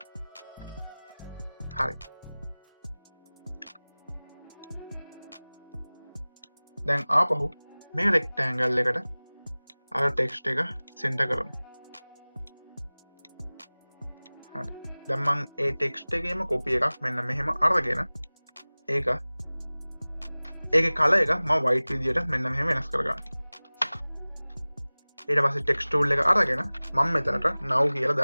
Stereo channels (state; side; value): inverted; both; correlation -1.00